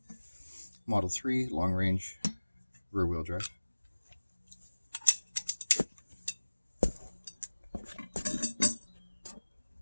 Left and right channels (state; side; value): inverted; both; correlation -1.00